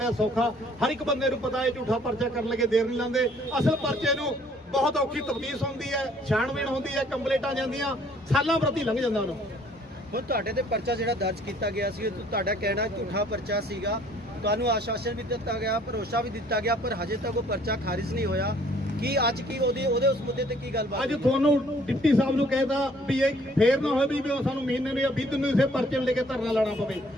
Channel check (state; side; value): normal; both; correlation 0.59